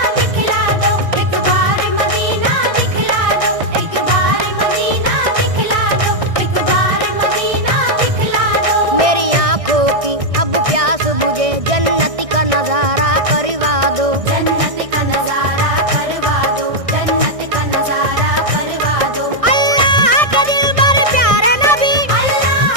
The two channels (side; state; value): left; late; 1.6 ms